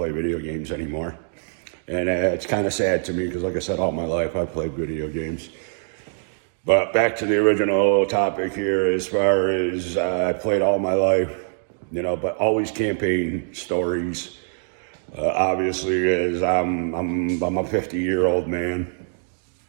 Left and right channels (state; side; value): silent; left; 63 dB below the other